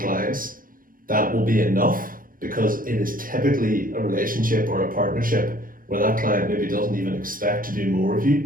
clients, that will be enough, because it is typically a relationship or a partnership where that client maybe doesn't even expect to do more of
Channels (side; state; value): left; late; 0.41 ms